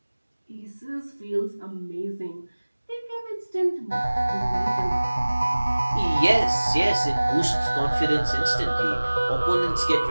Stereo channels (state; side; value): inverted; both; correlation -1.00